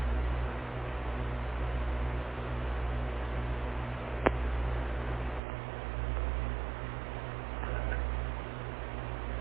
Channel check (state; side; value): drops out; left; at 5.4 s